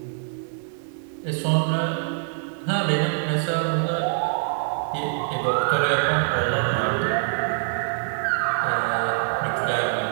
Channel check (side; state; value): left; silent; 62 dB below the other